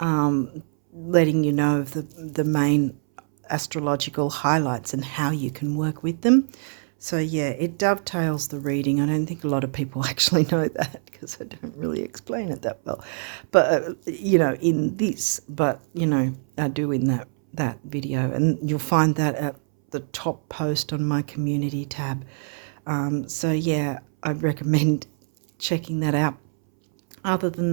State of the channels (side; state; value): left; silent; 62 dB below the other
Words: letting you know of the main astrological highlights and how you can work with them. So yeah, it dovetails the reading. I don't think a lot of people actually know that because I don't really explain it that well, but in this, but I do in that video, and you'll find that at the top post on my community tab. So yeah, I'd recommend checking that out. Other